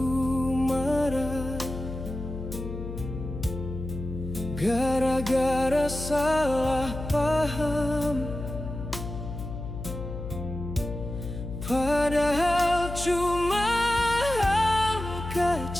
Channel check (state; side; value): noise; left; hum, 8 dB below the sound